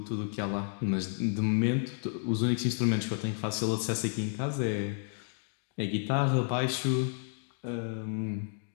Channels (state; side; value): silent; right; digital silence